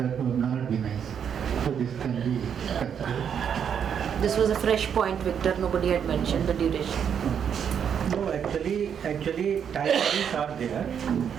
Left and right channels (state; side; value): quieter; left; 7.9 dB